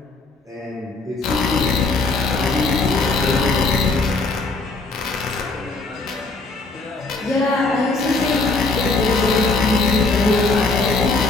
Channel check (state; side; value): quieter; right; 3.5 dB